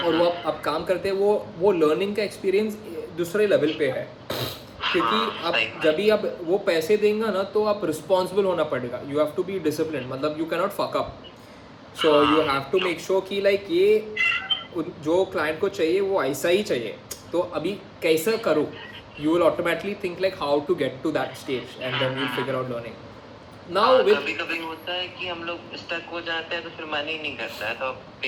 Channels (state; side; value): identical; both; correlation 1.00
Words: वो आप काम करते हैं, वो लर्निंग का एक्सपीरियंस दूसरे लेवल पे है। क्योंकि आप जब भी आप वो पैसे देंगे ना, तो आप रिस्पॉन्सिबल होना पड़ेगा, you have to be discipline, मतलब you cannot fuck up, so you have to make sure कि लाइक ये जो क्लाइंट को चाहिए वो ऐसा ही चाहिए। तो अभी कैसा करूँ, you will automatically think like how to get to that stage, and then you'll figure out learning. Now with कभी-कभी होता है कि हम लोग स्टक हो जाते हैं तो फिर मन ही नहीं करता है, तो